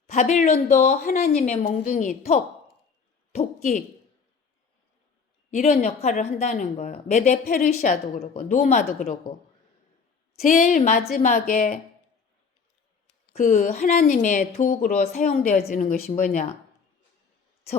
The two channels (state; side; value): quieter; right; 5.5 dB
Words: 바빌론도 하나님의 몽둥이, 도끼 이런 역할을 한다는 거예요. 메데 페르시아도 그러고 노마도 그러고 제일 마지막에 그 하나님의 도구로 사용되어지는 것이 뭐냐?